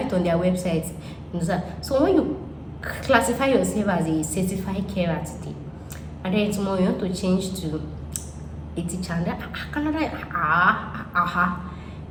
it on their website. You understand? So when you classify yourself as a certified carer today, and then tomorrow you want to change to a teacher, and Canada,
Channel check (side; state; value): both; identical; correlation 1.00